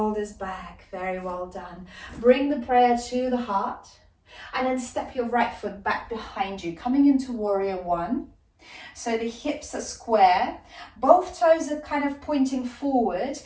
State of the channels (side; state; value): both; identical; correlation 1.00